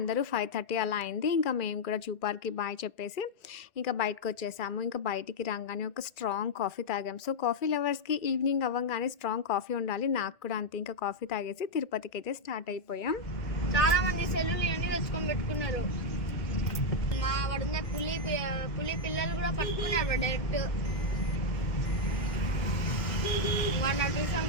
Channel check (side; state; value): right; late; 2.4 ms